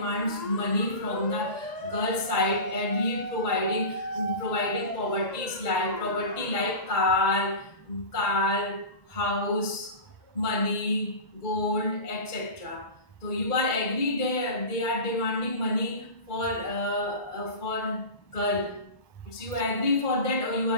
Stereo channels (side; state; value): right; late; 2.2 ms